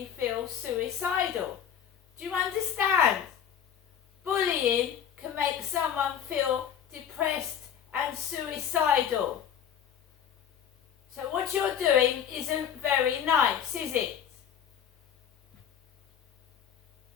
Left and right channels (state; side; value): quieter; right; 8.8 dB